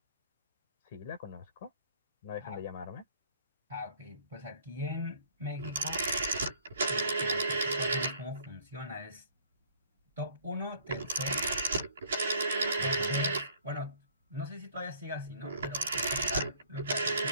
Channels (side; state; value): both; inverted; correlation -0.57